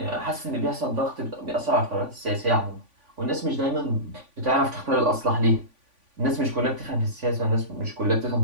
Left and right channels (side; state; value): left; late; 3.5 ms